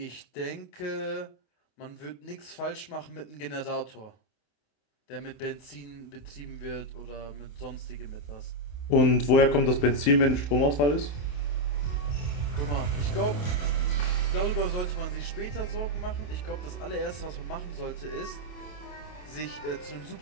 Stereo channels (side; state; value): right; late; 28 ms